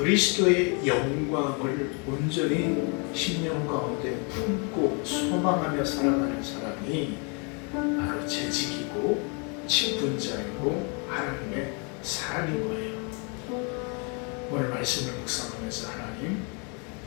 영광을 온전히 심령 가운데 품고 소망하며 살아가는 사람이 바로 재직이고 직분자이고 하나님의 사람인 거예요. 오늘 말씀을 묵상하면서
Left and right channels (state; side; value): quieter; right; 35.1 dB